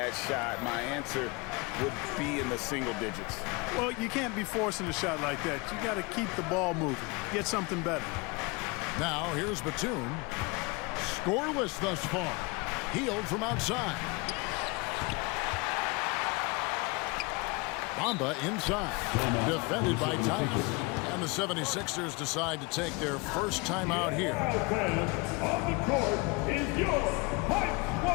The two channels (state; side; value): quieter; right; 27.0 dB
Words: shot, my answer would be in the single digits. Well, you can't be forcing a shot like that. You got to keep the ball moving. Get something better. Now, here's Batum. Scoreless thus far. Healed from outside. Bamba inside. Defended by Tice. And the 76ers decide to take their first time out here. On the court is your Hype